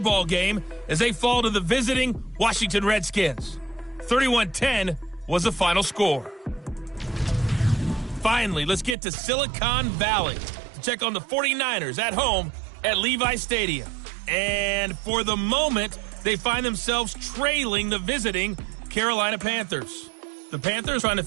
game as they fall to the visiting Washington Redskins. 31-10 was the final score. Finally, let's get to Silicon Valley to check on the 49ers at home at Levi Stadium. And for the moment, they find themselves trailing the visiting Carolina Panthers. The Panthers trying to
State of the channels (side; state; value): left; drops out; at 9.0 s